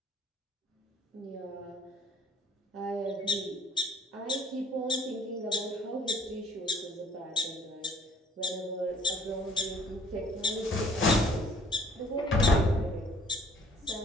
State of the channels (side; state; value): both; normal; correlation 0.56